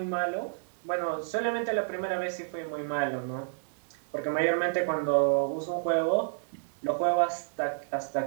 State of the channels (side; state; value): left; silent; digital silence